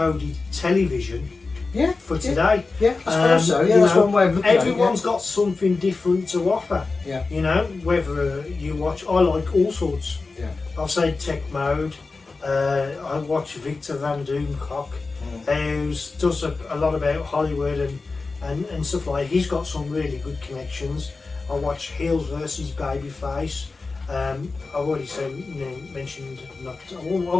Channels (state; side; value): quieter; right; 3.9 dB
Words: television. Yeah, for today. Yeah, I suppose so. Yeah, that's one way of looking at it. Everyone's got something different to offer. Yeah. You know, whether you watch, I like all sorts. Yeah. I'll say Tech Mode. I watch Victor Van Doomcock, who does a lot about Hollywood and stuff like that. He's got some really good connections. I watch Heels versus Babyface. I've already mentioned,